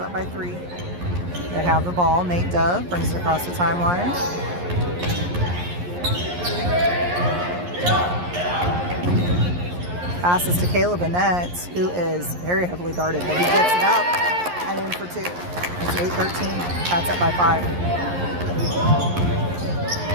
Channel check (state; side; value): late; left; 11 ms